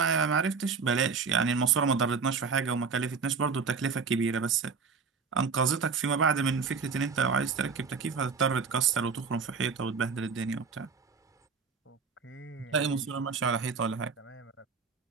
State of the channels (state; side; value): quieter; left; 5.4 dB